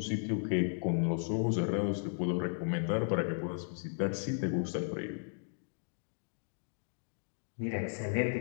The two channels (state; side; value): silent; right; digital silence